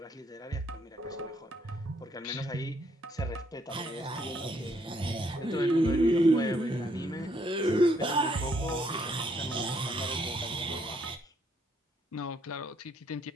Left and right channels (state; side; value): normal; both; correlation 0.70